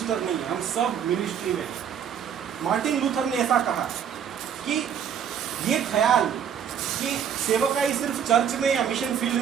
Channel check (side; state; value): left; quieter; 8.3 dB